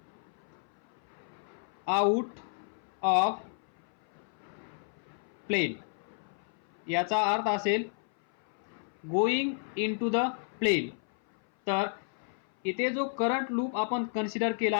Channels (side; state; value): right; silent; 56 dB below the other